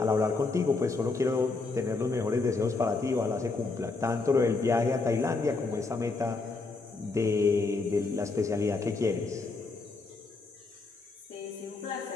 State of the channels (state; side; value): quieter; right; 3.8 dB